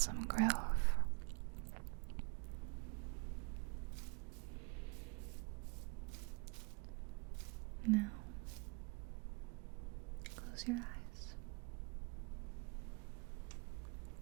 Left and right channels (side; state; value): left; quieter; 32.6 dB